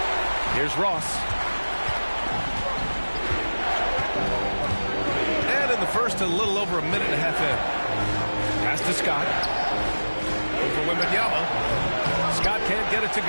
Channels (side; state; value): both; inverted; correlation -1.00